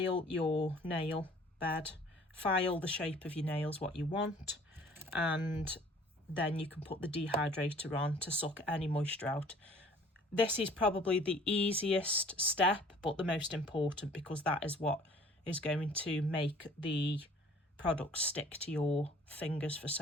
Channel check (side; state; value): both; normal; correlation 0.52